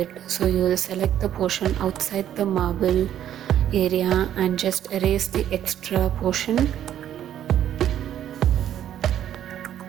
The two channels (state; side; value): quieter; left; 10.8 dB